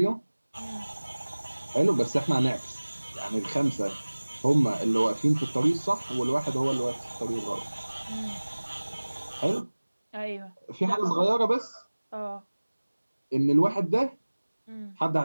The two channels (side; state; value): both; inverted; correlation -1.00